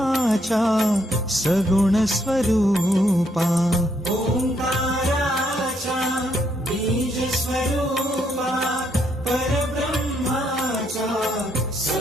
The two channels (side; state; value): both; normal; correlation 0.74